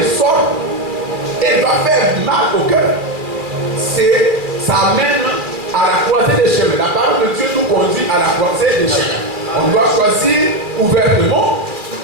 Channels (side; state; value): left; late; 2.4 ms